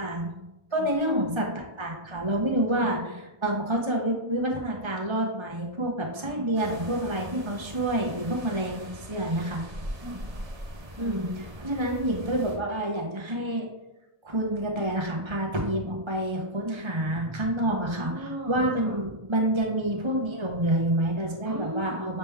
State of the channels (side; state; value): left; late; 1.3 ms